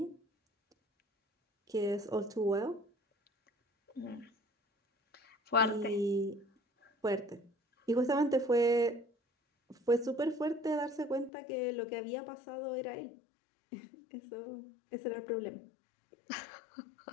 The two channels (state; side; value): drops out; right; at 11.3 s